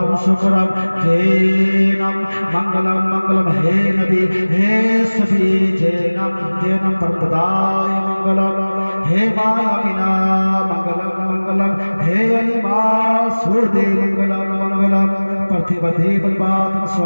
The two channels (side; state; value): both; inverted; correlation -1.00